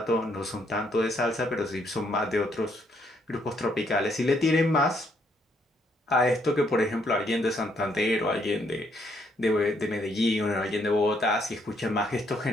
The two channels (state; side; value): normal; both; correlation 0.71